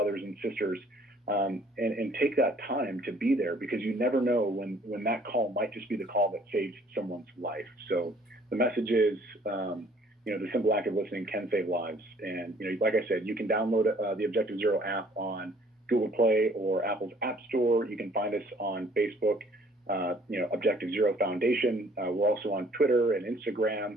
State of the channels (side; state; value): both; normal; correlation 0.59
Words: and sisters. And take that time to be there, because you never know when that call might just be the call that saves someone's life. So the message is, the simple act of listening can save lives. And, like I said, you can download the Objective Zero app on Google Play or Apple's App Store. You can find us on Facebook, Objective Zero Foundation. We're also on Twitter and